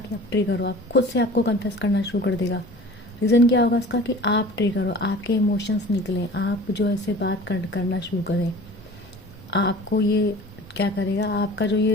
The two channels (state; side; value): normal; both; correlation 0.43